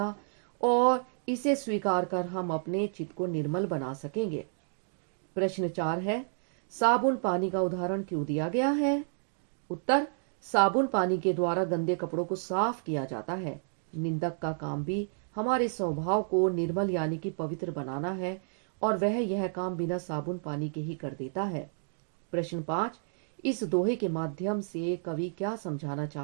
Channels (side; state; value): left; silent; digital silence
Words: और इसे स्वीकार कर हम अपने चित्त को निर्मल बना सकेंगे। प्रश्न 4 है, साबुन पानी का उदाहरण क्यों दिया गया है? उत्तर, साबुन पानी के द्वारा गंदे कपड़ों को साफ किया जाता है। निंदक का काम भी हमारे स्वभाव को निर्मल यानी कि पवित्र बनाना है और वह यह काम बिना साबुन पानी के ही कर देता है। प्रश्न 5, इस दोहे के माध्यम से कवि क्या समझाना